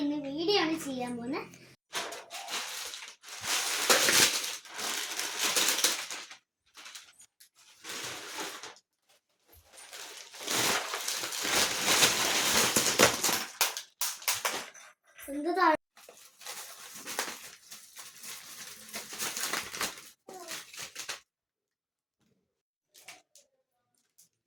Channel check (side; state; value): both; identical; correlation 1.00